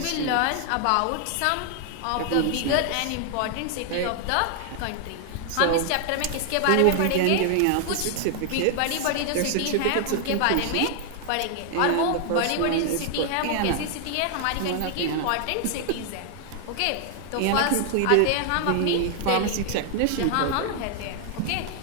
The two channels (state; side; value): different; both; correlation 0.00